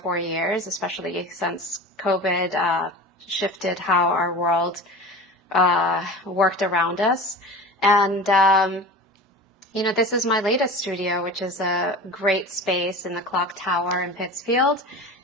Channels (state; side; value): normal; both; correlation 0.34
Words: years, especially since COVID shifted how our world worked around us. And this is my latest studio, which is a great space in the Clock Tower in Pittsfield.